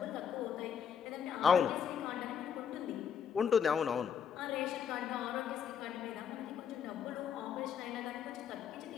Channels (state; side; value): quieter; right; 7.6 dB